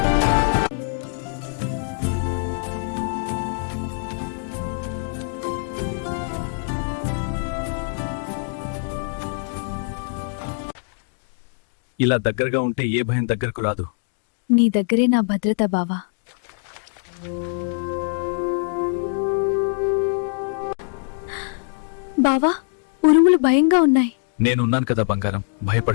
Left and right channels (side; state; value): right; silent; 63 dB below the other